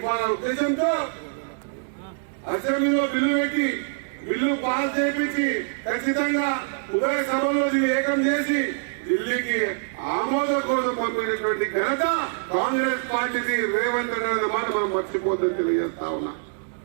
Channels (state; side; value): silent; left; digital silence